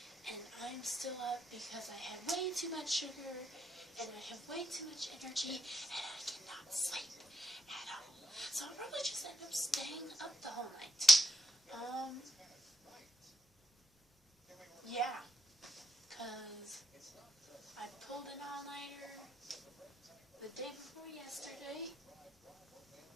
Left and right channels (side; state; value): both; normal; correlation 0.79